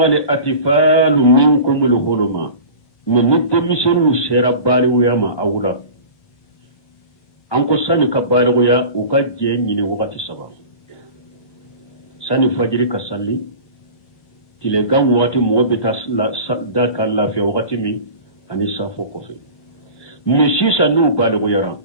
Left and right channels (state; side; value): late; right; 1.6 ms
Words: الأطفال منكم الحلم من نتمسن الشربال ويما أولا anko sani ka baligoya u ka je ɲini wagati saba sani fajiri ka salli tilegan wagati mɔgɔ bɛ taa da ka lafiya wagati min ani safo kɔfɛ mɛ sisan n'u baligoyara